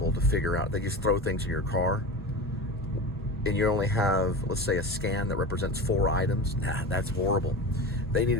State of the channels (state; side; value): normal; both; correlation 0.28